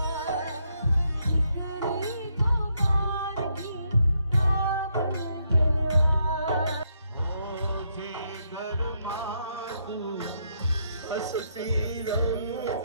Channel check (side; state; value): both; inverted; correlation -0.76